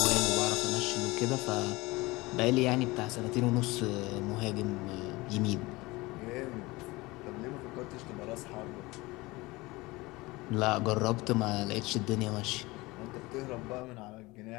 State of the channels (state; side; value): quieter; right; 21.9 dB